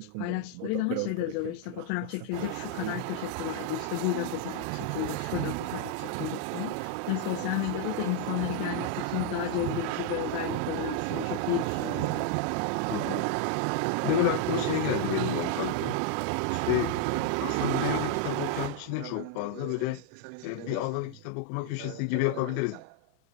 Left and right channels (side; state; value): both; different; correlation 0.00